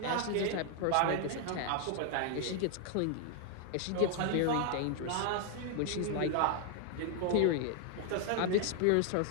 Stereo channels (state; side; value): different; both; correlation 0.00